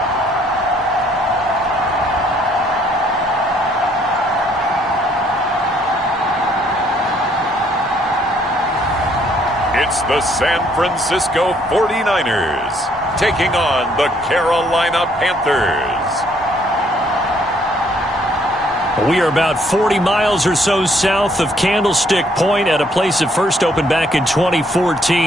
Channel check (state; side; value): normal; both; correlation 0.66